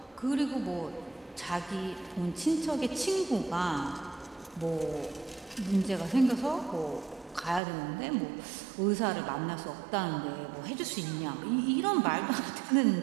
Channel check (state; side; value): drops out; left; at 7.6 s